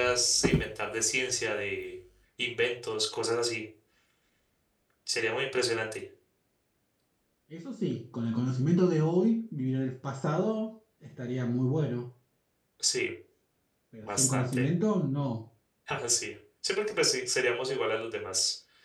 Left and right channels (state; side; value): identical; both; correlation 1.00